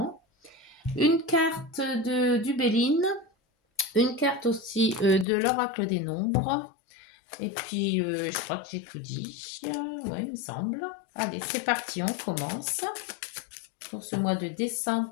une carte du Béline, une carte aussi de l'oracle des nombres. Et puis, je crois que j'ai tout dit. Ouais, il me semble. Allez, c'est parti, on commence. Pour ce mois de décembre,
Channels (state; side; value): drops out; right; at 5.2 s